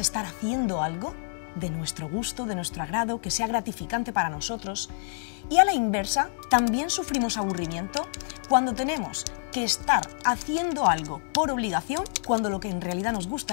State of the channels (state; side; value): silent; right; 57 dB below the other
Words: haciendo algo de nuestro gusto, de nuestro agrado, que sea gratificante para nosotros. Y a la inversa, también sufrimos aburrimiento cuando tenemos que estar haciendo algo por obligación, cuando lo que en realidad nos